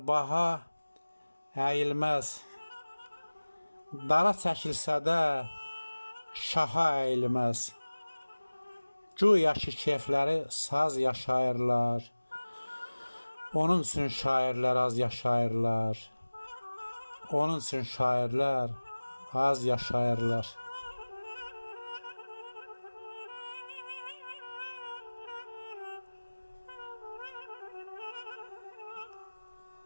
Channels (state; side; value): inverted; both; correlation -1.00